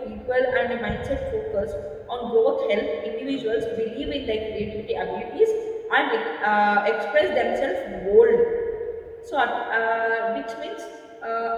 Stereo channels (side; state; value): both; identical; correlation 1.00